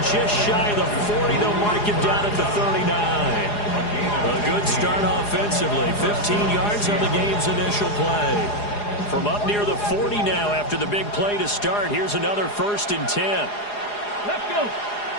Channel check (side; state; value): right; late; 4.8 ms